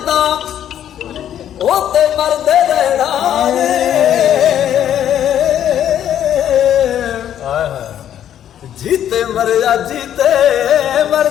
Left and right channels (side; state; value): right; quieter; 10.4 dB